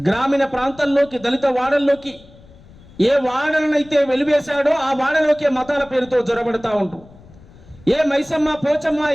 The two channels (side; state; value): left; noise; rumble, 23 dB below the sound